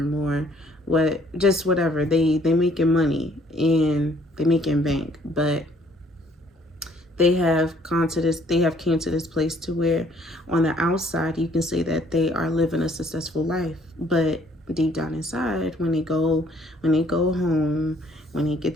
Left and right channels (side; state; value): both; normal; correlation 0.62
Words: or whatever. They making money and they making bank, but they have came to this place to where on the outside you can say that they are living a successful life, but deep down inside, when they go home, when they get